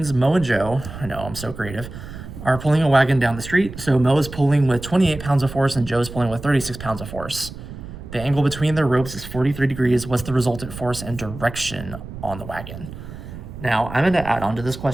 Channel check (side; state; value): right; noise; rumble, 12 dB below the sound